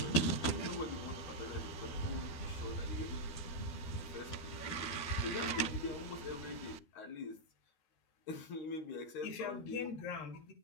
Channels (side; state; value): right; late; 12 ms